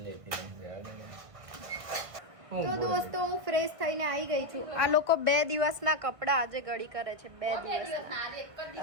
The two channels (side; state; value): left; late; 1.5 ms